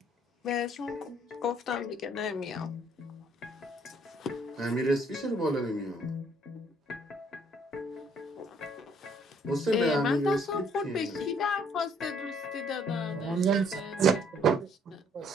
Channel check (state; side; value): normal; both; correlation 0.63